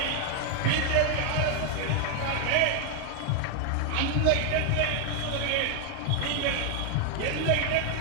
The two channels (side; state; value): both; different; correlation 0.00